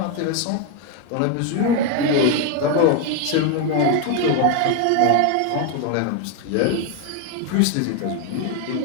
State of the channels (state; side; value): different; both; correlation 0.01